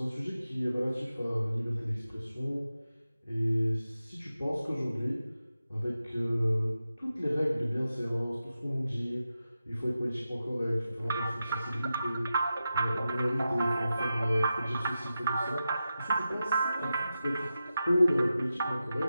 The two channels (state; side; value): inverted; both; correlation -0.91